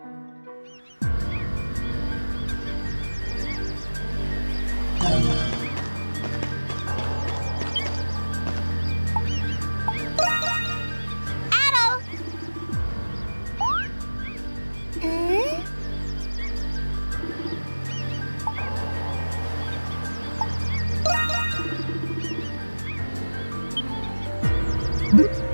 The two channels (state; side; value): inverted; both; correlation -1.00